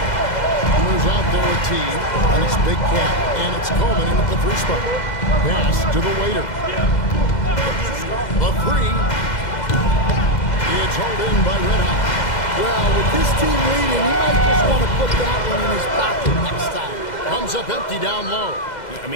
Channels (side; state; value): right; late; 2.0 ms